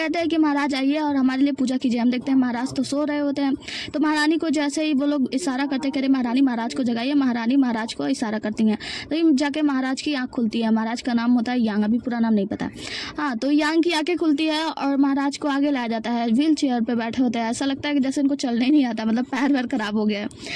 हैं कि महाराज आइए और हमारे लिए पूजा कीजिए। हम देखते हैं महाराज तो सो रहे होते हैं, तो महारानी को जैसे ही वो लोग इशारा करते कह रहे महारानी महाराज को जगाइए, महारानी महाराज को इशारा करती हैं तो जाके महाराज की आँख खुलती है। महाराज का नाम होता है यांग, अभी पूरा नाम नहीं पता। हाँ, तो यांग की आंखें खुलती है और महाराज को आगे लाया जाता है। व्हील चेयर पे बैठे होते हैं, ऐसा लगता है कि जैसे इनको चलने ही नहीं आता, मतलब पैर वैर खराब हो गया है।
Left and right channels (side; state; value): both; identical; correlation 1.00